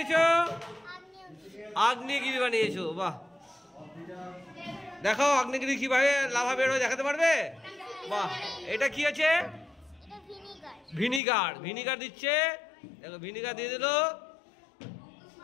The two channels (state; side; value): drops out; right; at 11.2 s